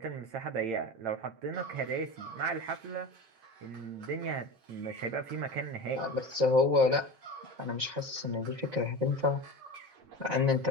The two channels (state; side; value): late; left; 7.5 ms